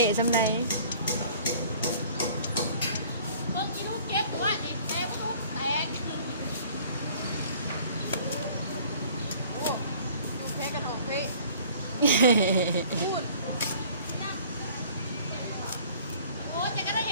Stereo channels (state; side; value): inverted; both; correlation -0.52